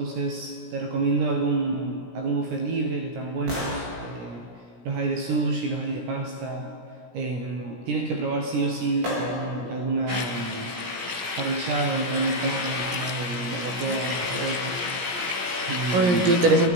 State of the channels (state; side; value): late; left; 17 ms